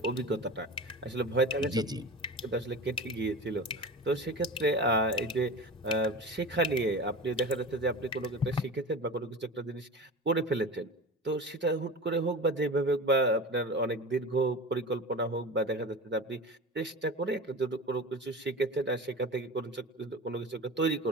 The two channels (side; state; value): both; normal; correlation 0.31